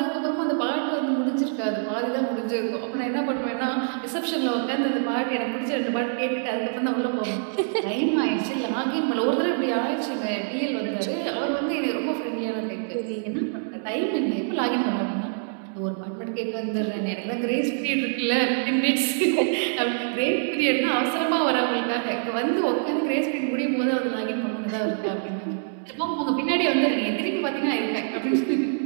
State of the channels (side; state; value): left; silent; 61 dB below the other